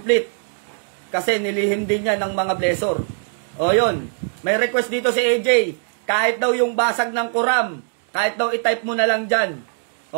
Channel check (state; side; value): silent; left; 65 dB below the other